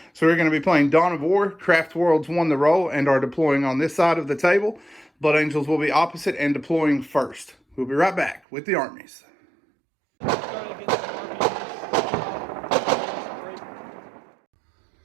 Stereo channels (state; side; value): drops out; left; at 8.4 s